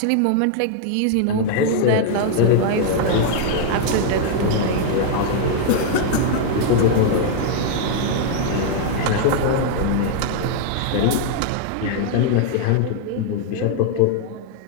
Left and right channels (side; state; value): both; different; correlation -0.01